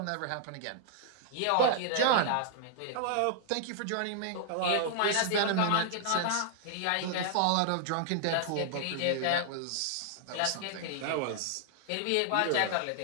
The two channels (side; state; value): both; different; correlation -0.01